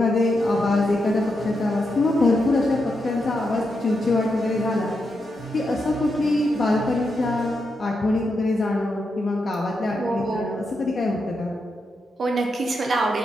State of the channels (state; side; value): normal; both; correlation 0.85